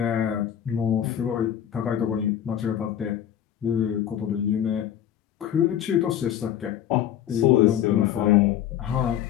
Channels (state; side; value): quieter; right; 10.5 dB